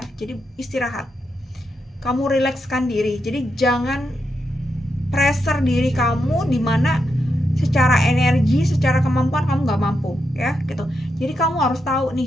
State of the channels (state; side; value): normal; both; correlation 0.84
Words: Jadi istirahat, kamu rilekskan diri. Jadi jangan pressure diri kamu dimana secara energi, secara kemampuan kamu nggak mampu ya gitu. Jadi kamu harus tahu